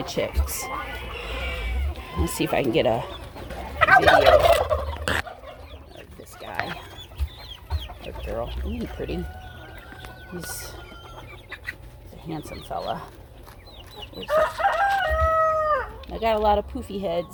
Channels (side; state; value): both; identical; correlation 1.00